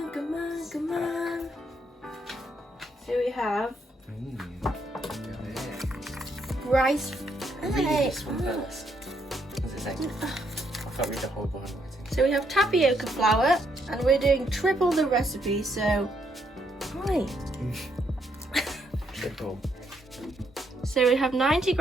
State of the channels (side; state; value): both; normal; correlation 0.75